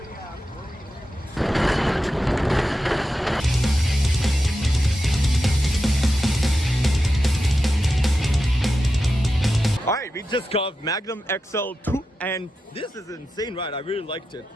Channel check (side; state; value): both; normal; correlation 0.90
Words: Alright, we just got Magnum XL-200 and this is an insane ride. I really liked it.